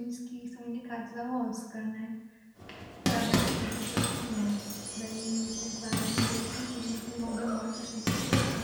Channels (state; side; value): identical; both; correlation 1.00